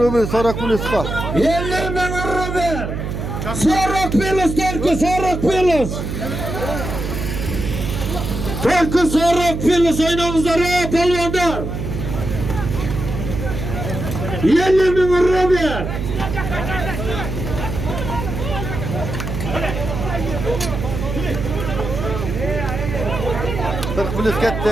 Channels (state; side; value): noise; right; hum, 4 dB below the sound